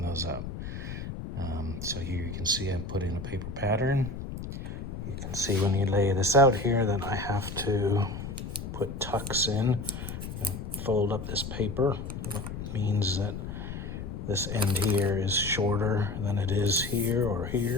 those up. So here you can see I'm putting a paper pattern. You can see when you lay this out here that I have to put tucks in, fold up this paper, which means that this end here is shorter than it is here or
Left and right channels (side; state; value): left; noise; rumble, 7 dB below the sound